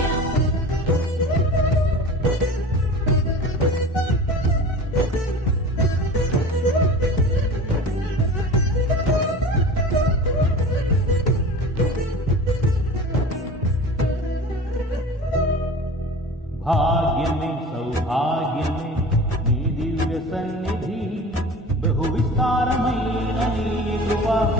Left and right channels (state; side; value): normal; both; correlation 0.37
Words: భాగ్యమే సౌభాగ్యమే నీ దివ్య సన్నిధి బహు విస్తారమైన నీ కృప